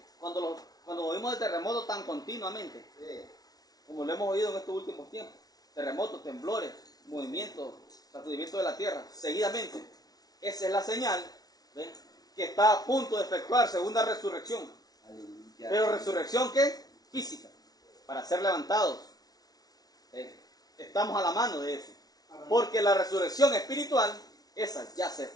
cuando oímos de terremotos tan continuamente, Sí. como lo hemos oído en estos últimos tiempos, terremotos, temblores, movimientos, sacudimientos de la tierra, seguidamente, esa es la señal, ¿ven?, que está a punto de efectuarse una resurrección. Aleluya. Pero resurrección, ¿qué? Física, para ser levantados. Estamos a la mano de eso. Porque la resurrección espiritual, esa ya se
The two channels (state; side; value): late; right; 0.19 ms